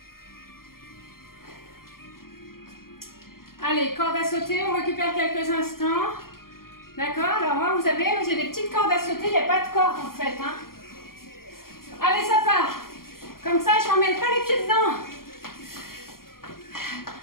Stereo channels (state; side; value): late; right; 0.92 ms